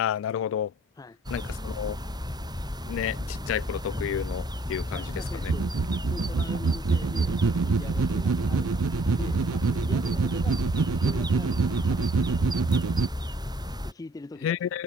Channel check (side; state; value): both; normal; correlation 0.59